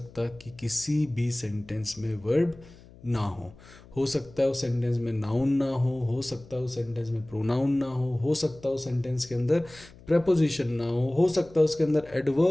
कि किसी भी सेंटेंस में वर्ब ना हो सकता है उस सेंटेंस में नाउन ना हो सकता है उस सेंटेंस में प्रोनाउन ना हो सकता है उस सेंटेंस के अंदर प्रेपोजिशन ना हो सकता है उसके अंदर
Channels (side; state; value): left; noise; hum, 22 dB below the sound